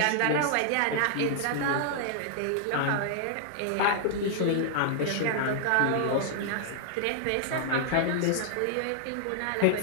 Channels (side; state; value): both; different; correlation -0.01